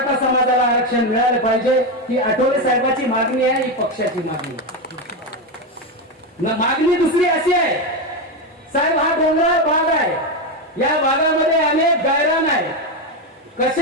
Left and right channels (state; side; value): normal; both; correlation 0.11